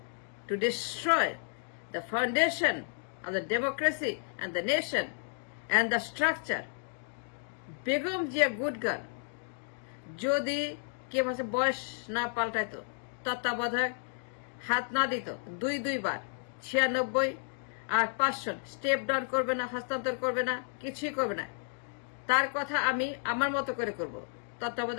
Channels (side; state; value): right; silent; 56 dB below the other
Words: to destroy the foundation of the democracy and the nation and the structure Begum Zia good girl যদি কে মাসে বয়স না পাল্টাইতো, তত্ত্বাবধায়ক হাত না দিত 2 বার 96 আর 500 স্টেপ ডাউন করবে না, হস্তান্তর করবে না, কিছুই করবে না। তার কথা আমি আমার মতো করে করব,